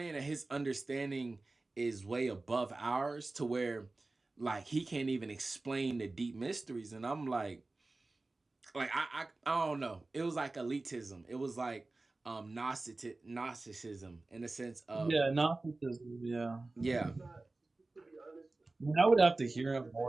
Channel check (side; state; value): left; quieter; 3.2 dB